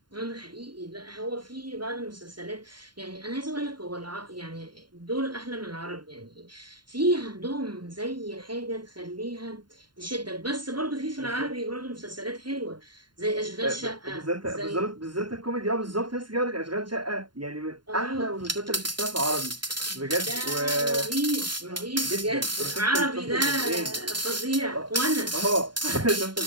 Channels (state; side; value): late; left; 0.71 ms